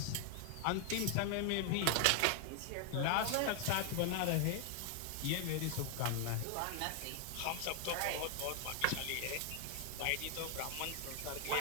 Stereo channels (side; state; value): both; different; correlation 0.00